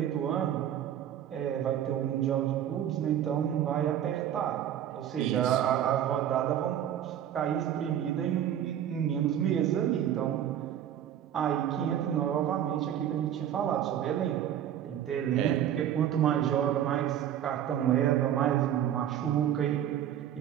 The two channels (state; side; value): quieter; left; 10.4 dB